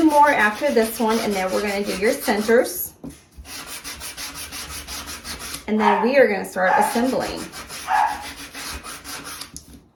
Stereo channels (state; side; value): identical; both; correlation 1.00